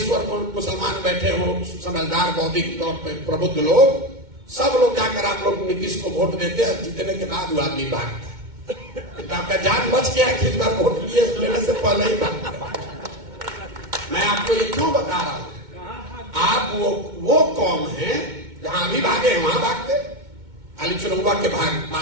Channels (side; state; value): left; late; 2.2 ms